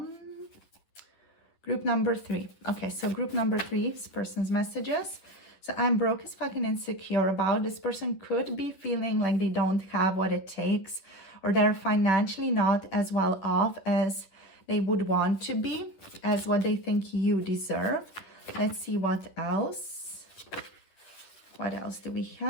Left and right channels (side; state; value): right; late; 10 ms